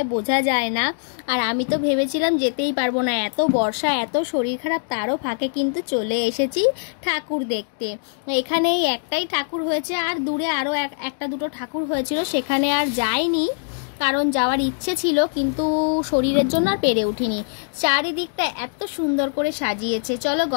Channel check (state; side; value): silent; right; digital silence